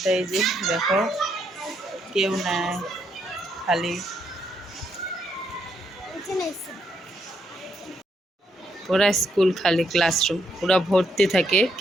এই যে দেখো কেউ নাই, খালি। পুরা স্কুল খালি, ক্লাসরুম পুরা ভর্তি থাকে,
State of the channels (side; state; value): both; normal; correlation 0.76